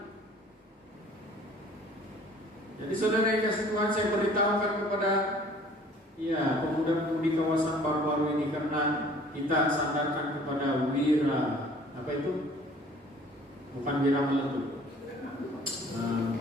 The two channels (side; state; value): both; normal; correlation 0.52